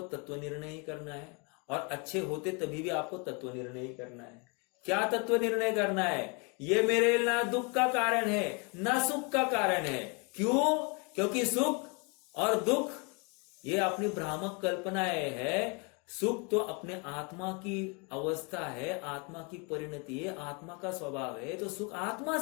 तत्व निर्णय ही करना है। और अच्छे होते तभी भी आपको तत्व निर्णय ही करना है। क्या तत्व निर्णय करना है? ये मेरे ना दुख का कारण है ना सुख का कारण है। क्यों? क्योंकि सुख और दुख ये अपनी भ्रामक कल्पनाएं है। सुख तो अपने आत्मा की अवस्था है, आत्मा की परिणति है, आत्मा का स्वभाव है। तो सुख आत्मा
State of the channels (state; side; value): quieter; right; 32.7 dB